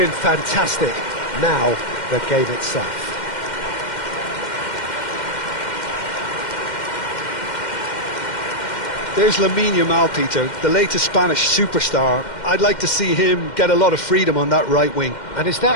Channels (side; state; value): right; late; 2.1 ms